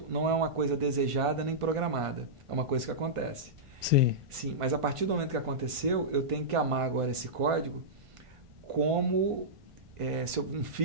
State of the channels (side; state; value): left; late; 1.5 ms